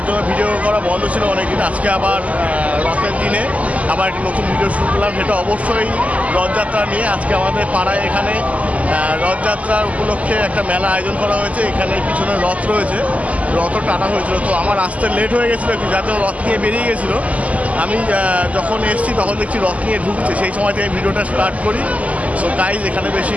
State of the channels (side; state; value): left; late; 0.070 ms